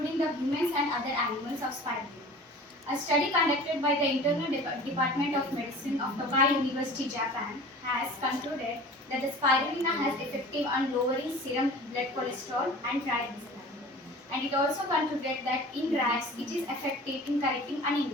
the humans and other animals of spirulina. A study conducted by the Internal Department of Medicine of Tokai University, Japan has concluded that the spirulina has effective on lowering serum blood cholesterol and triglycerides. And it also concluded that in rats it is effective in correcting anemia.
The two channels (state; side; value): normal; both; correlation 0.41